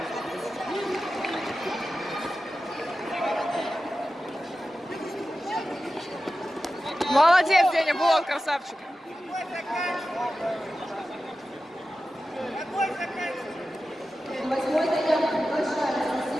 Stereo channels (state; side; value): normal; both; correlation 0.93